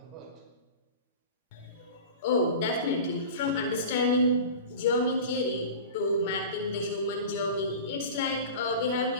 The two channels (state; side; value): inverted; both; correlation -0.34